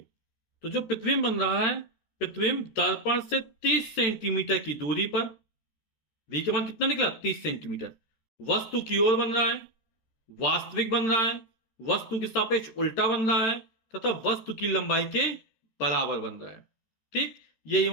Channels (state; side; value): late; right; 13 ms